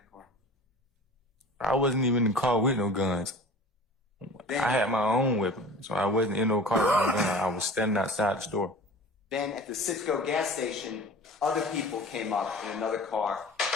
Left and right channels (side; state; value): both; normal; correlation 0.40